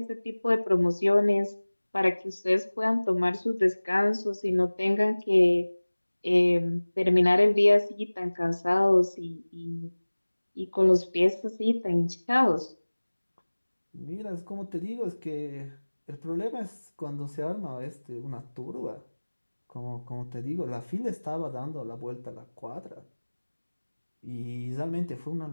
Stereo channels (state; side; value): inverted; both; correlation -1.00